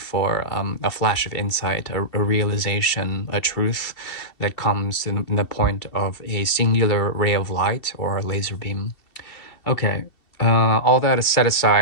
a flash of insight, a realization, a truth that comes in the point of a singular ray of light or a laser beam. Okay, all that is set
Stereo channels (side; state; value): right; late; 2.7 ms